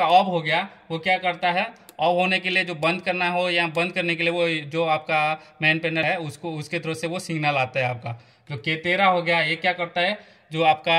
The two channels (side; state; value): both; identical; correlation 1.00